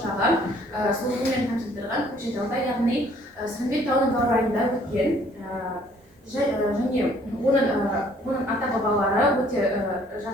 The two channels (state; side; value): normal; both; correlation 0.60